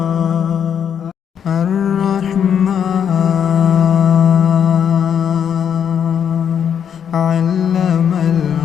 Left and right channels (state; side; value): quieter; right; 8.2 dB